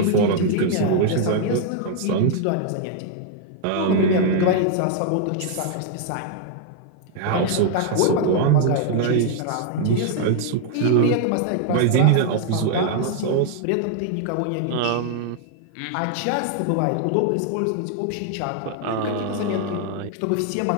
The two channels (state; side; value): different; both; correlation 0.00